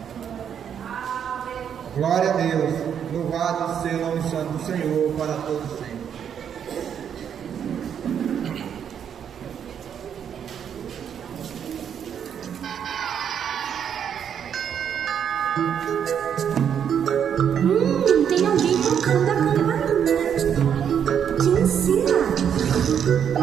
Glória a Deus. Louvado seja o nome santo do Senhor para todos sempre. Tem alguém tocando a campainha. Te ensina.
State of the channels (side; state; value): left; quieter; 8.4 dB